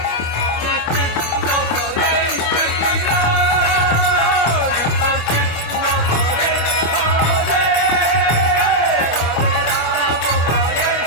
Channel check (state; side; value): late; right; 25 ms